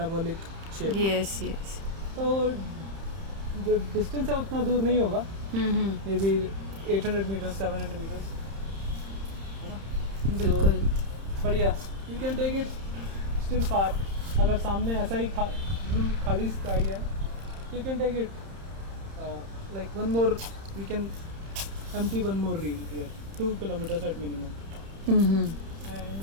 shape. Yes yes. तो जो डिस्टेंस है उतना दूर नहीं होगा. मे बी 800 मीटर्स 700 मीटर्स है ना. बिल्कुल. बढ़िया. You can take it still far. अगर सामने ऐसा ही खाली स्काई है you can take it like one more, we can empty one more reel here, 2 kilometers at minimum, Mm-hmm.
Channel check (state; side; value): late; left; 31 ms